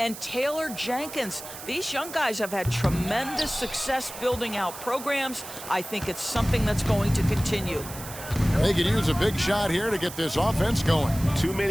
Taylor Jenkins. These young guys have had tremendous success building out programs. I think it's something that's going to continue. They could use a big shot here to get this offense going. Too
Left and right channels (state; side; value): noise; right; hiss, 12 dB below the sound